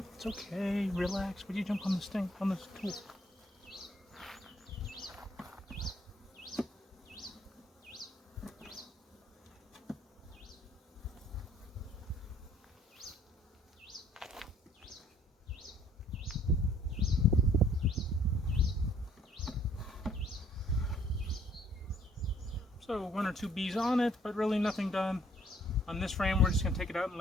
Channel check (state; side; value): normal; both; correlation 0.62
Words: It's okay. Relax. Would you jump on this thing? On this tool? So 1 or 2 bees on it, but really nothing done. On this frame, we're just going to take it out and